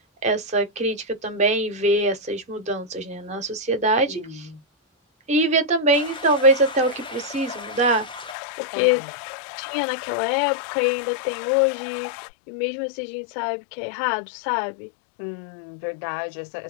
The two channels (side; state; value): right; drops out; at 8.3 s